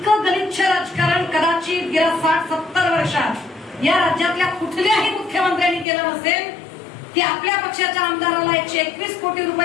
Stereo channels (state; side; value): drops out; right; at 5.9 s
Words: गलिच्छ राजकारण कदाचित गेल्या 60-70 वर्षात या राज्यातल्या कुठल्याही मुख्यमंत्र्यांनी केलं नसेल की आपल्या पक्षाच्या आमदाराला 121 कोटी